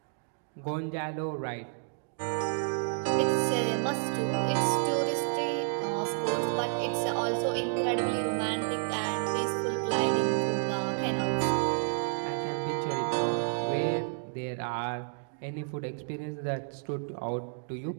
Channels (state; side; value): silent; left; digital silence